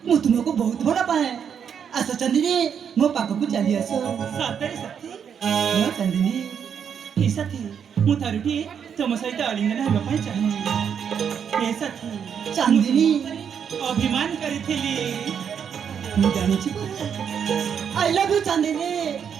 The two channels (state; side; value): quieter; left; 7.7 dB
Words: ମୁଁ ତୁମକୁ ବହୁତ ଭଲ ପାଏ ଆସ ଚାନ୍ଦିନୀ ମୋ ପାଖକୁ ଚାଲି ଆସ ସତରେ ସାଥୀ ହଁ ଚାନ୍ଦିନୀ ହେ ସାଥୀ ମୁଁ ଥରୁଟିଏ ତମ ସହିତ ଆଲିଙ୍ଗନ ହେବା ପାଇଁ ଚାହେଁ ହେ ସାଥୀ ଚାନ୍ଦିନୀ ଅଭିମାନ କରିଥିଲି ମୁଁ ଜାଣିଛି ପରା I love you Chandini